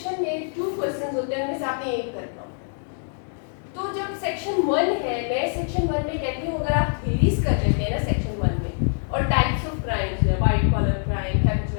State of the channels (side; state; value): right; silent; digital silence